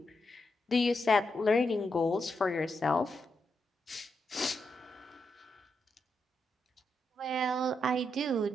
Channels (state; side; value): normal; both; correlation 0.83